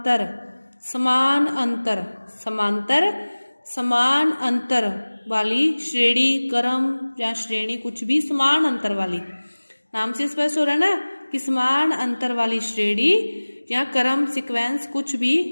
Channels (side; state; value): both; inverted; correlation -1.00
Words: समान अंतर, समांतर समान अंतर वाली श्रेणी, क्रम या श्रेणी कुछ भी समान अंतर वाली, नाम से स्पष्ट हो रहा है ना कि समान अंतर वाली श्रेणी या क्रम सीक्वेंस कुछ भी।